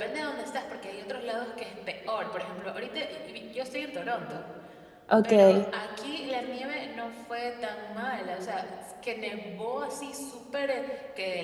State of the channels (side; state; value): both; identical; correlation 1.00